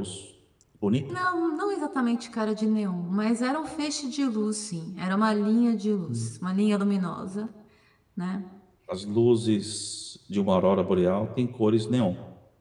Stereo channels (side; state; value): both; identical; correlation 1.00